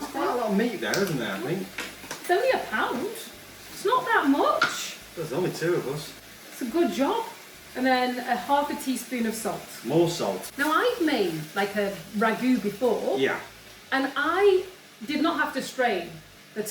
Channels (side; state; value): both; identical; correlation 1.00